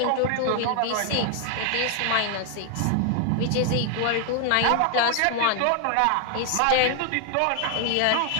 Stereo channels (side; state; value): both; different; correlation 0.00